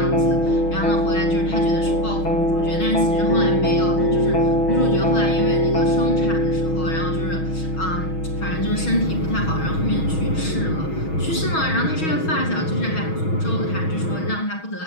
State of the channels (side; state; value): right; late; 6.2 ms